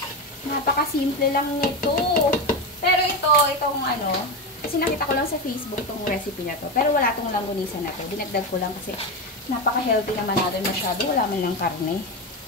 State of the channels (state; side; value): normal; both; correlation 0.16